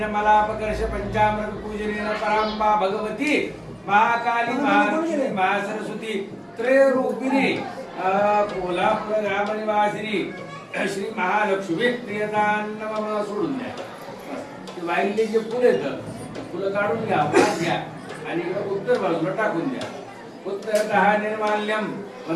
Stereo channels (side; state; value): both; identical; correlation 1.00